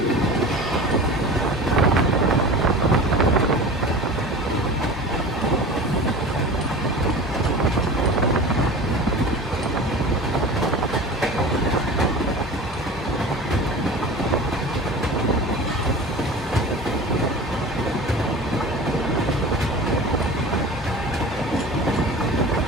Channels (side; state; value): both; normal; correlation 0.35